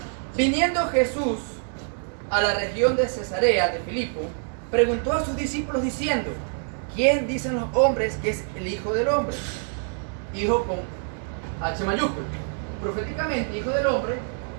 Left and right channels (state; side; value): silent; left; 61 dB below the other